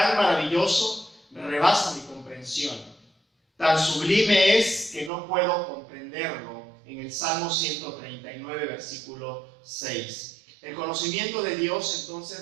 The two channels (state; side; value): drops out; left; at 5.1 s